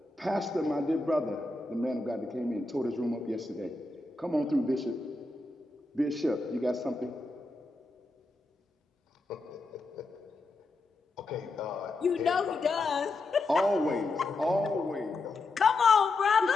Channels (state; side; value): quieter; right; 3.2 dB